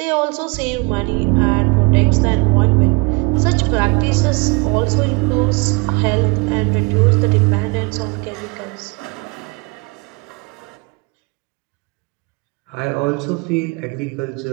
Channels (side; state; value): left; quieter; 29.2 dB